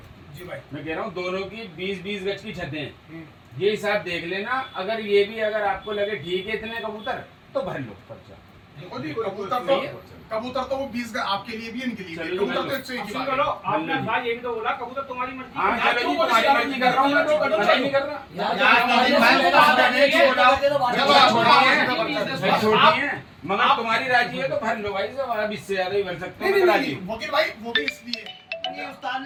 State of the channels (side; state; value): both; identical; correlation 1.00